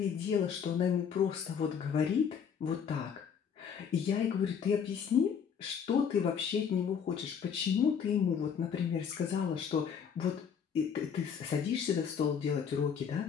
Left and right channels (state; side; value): quieter; right; 7.2 dB